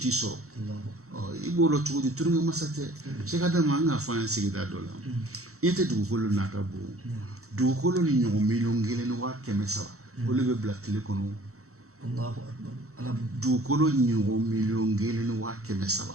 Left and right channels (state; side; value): late; left; 0.64 ms